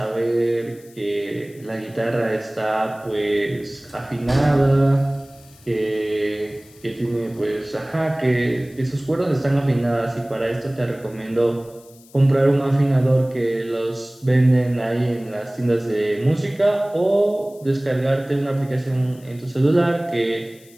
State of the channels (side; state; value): left; noise; hiss, 26 dB below the sound